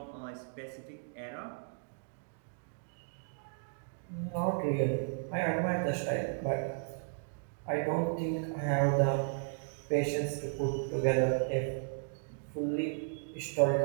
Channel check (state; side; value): silent; left; digital silence